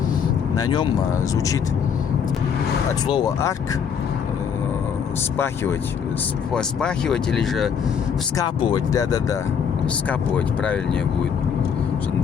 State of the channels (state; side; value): quieter; right; 7.2 dB